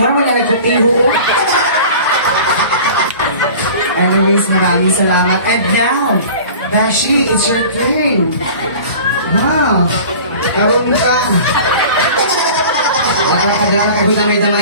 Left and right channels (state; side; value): inverted; both; correlation -0.41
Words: mo na nagkutiho. Anyways, maraming salamat. And now, Dashi, it's your turn. Wow. Karoon ka. Dala ka,